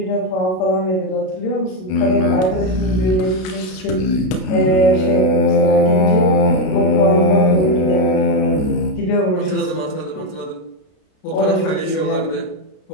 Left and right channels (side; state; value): right; late; 32 ms